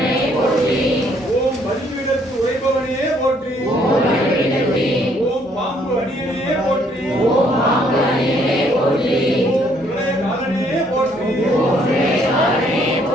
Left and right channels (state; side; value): normal; both; correlation 0.66